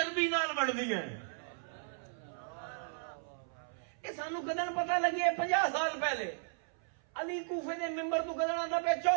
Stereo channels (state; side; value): silent; left; 54 dB below the other